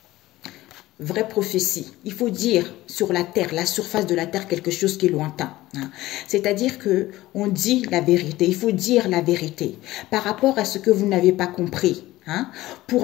Vraie prophétie. Il faut dire sur la terre, la surface de la terre, quelque chose qui est lointain. Hein. C'est-à-dire que on dit la vérité. Il faut dire la vérité par rapport à ce que vous n'avez pas compris. Hein,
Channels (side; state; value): right; quieter; 17.0 dB